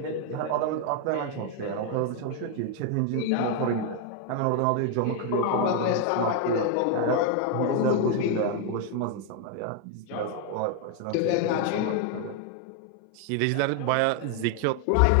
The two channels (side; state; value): both; different; correlation 0.00